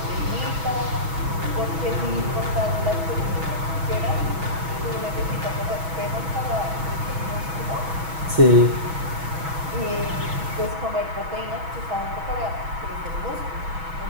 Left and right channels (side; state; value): left; late; 6.2 ms